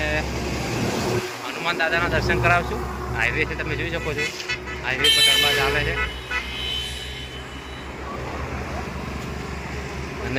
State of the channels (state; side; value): identical; both; correlation 1.00